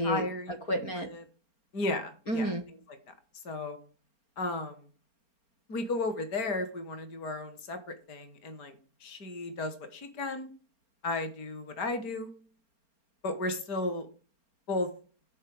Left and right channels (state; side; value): late; right; 4.4 ms